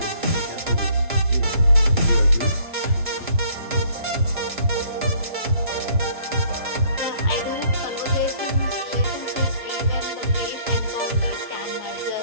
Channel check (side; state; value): both; inverted; correlation -0.61